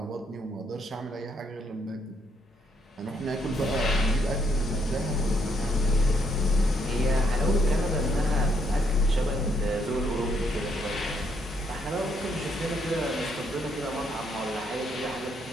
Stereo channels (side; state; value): both; normal; correlation 0.73